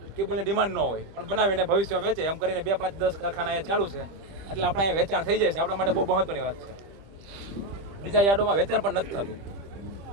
કેબલની ડિમાન્ડ ન હોય, પણ બનાવીને ભવિષ્યમાં વેચે એમ કરીને 2-5-10 કારખાના અહીંયા ચાલુ છે. એટલે આપણે અહીંયા વેચાણ થઈ જાય છે. આપણા માટે બહુ મહત્વની વાત છે. બીજા યાર્ડોમાં વેચાણ પણ નથી થતું.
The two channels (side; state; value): left; late; 25 ms